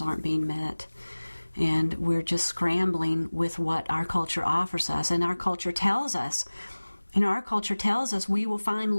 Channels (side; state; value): both; inverted; correlation -1.00